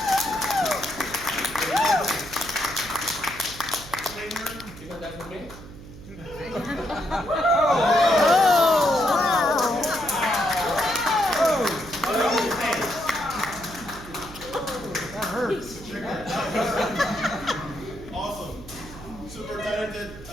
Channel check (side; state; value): right; noise; hum, 16 dB below the sound